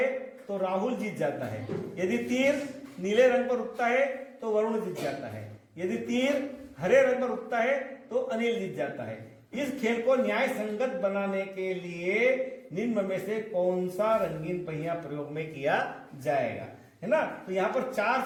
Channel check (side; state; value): both; identical; correlation 1.00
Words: तो राहुल जीत जाता है। यदि तीर नीले रंग पर रुकता है तो वरुण जीत जाता है। यदि तीर हरे रंग पर रुकता है तो अनिल जीत जाता है। इस खेल को न्याय संगत बनाने के लिए निम्न में से कौन सा रंगीन पहिया प्रयोग में किया जाएगा, है ना। तो यहाँ पर 4